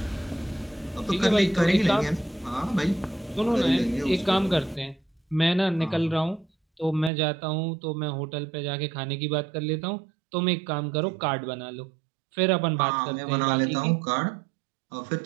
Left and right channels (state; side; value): drops out; left; at 7.1 s